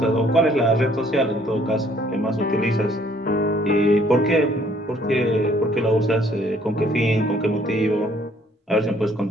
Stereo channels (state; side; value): normal; both; correlation 0.62